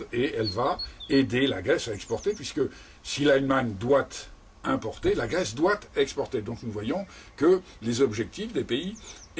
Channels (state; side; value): identical; both; correlation 1.00